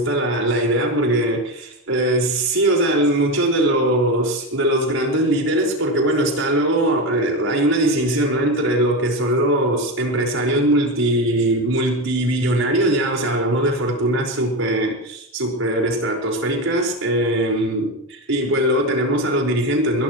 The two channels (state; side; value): normal; both; correlation 0.17